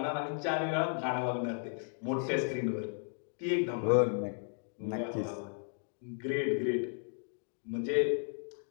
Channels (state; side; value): silent; right; 55 dB below the other